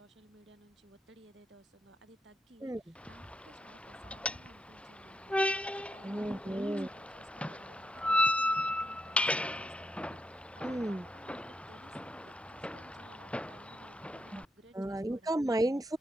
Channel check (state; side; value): normal; both; correlation 0.80